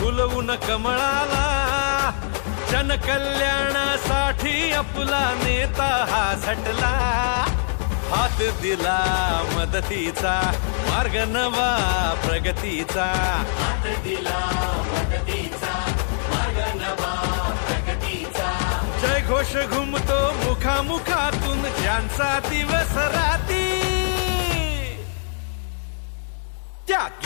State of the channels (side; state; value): right; silent; digital silence